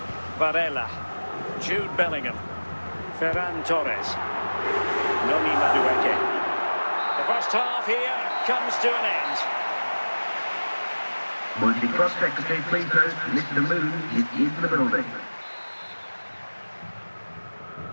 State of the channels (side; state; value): both; inverted; correlation -1.00